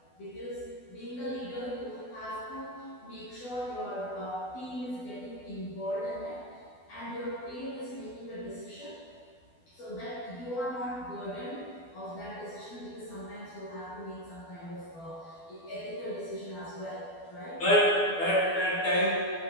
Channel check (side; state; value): right; late; 12 ms